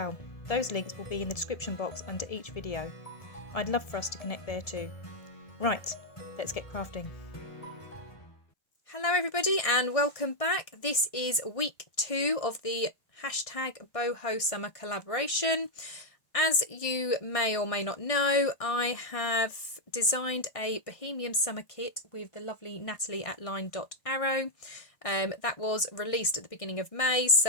Those links will be in the description box under each video. I'd love for us to connect there too. Right, let's get crafting. Hello everybody and welcome back. This is week 2 of the #boho summer collaboration. As you may or may not know, I have designed a Bohemian summer kit with the lovely Nathalie at LineDotArrow. That was released at the beginning of May,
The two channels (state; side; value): late; right; 1.6 ms